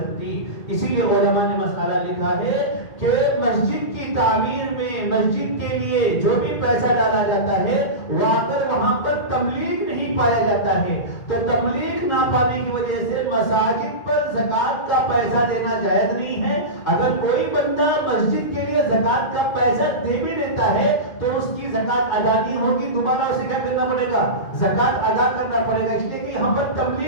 اسی لیے علماء نے مسئلہ لکھا ہے کہ مسجد کی تعمیر میں، مسجد کے لیے جو بھی پیسہ ڈالا جاتا ہے وہ اگر وہاں پر تملیغ نہیں پایا جاتا ہے تو تملیغ نہ پانے کی وجہ سے مساجد پر زکات کا پیسہ دینا جائز نہیں ہے۔ اگر کوئی بندہ مسجد کے لیے زکات کا پیسہ دے بھی دیتا ہے تو اس کی زکات ادا نہیں ہوگی، دوبارہ اسے کیا کرنا پڑے گا؟ زکات ادا کرنا پڑے گا، اس لیے کہ یہاں پر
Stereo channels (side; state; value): right; late; 1.8 ms